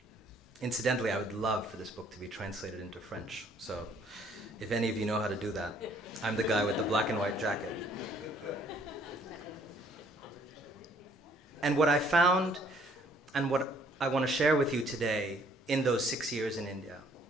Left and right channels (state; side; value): normal; both; correlation 0.62